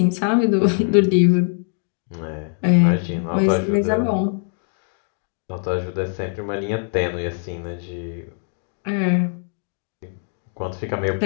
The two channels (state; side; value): silent; right; 60 dB below the other